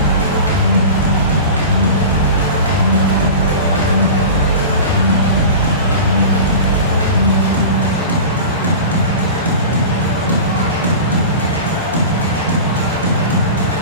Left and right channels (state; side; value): inverted; both; correlation -0.33